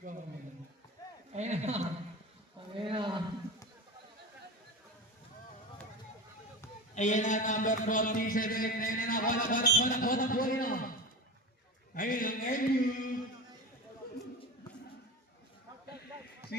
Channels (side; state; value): both; normal; correlation 0.27